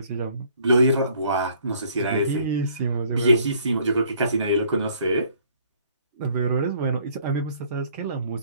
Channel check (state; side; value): inverted; both; correlation -0.60